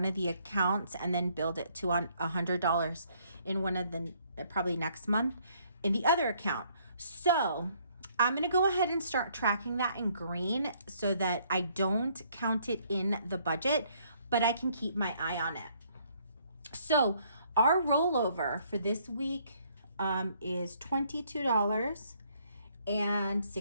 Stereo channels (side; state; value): both; inverted; correlation -0.65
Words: of the accounts, and then build it to $100 in one of the probably next month in the other account. So I'm going to go ahead and start tracking that in green so that I don't count it in the budget, but I can keep my eye on it. So our rollover for this week is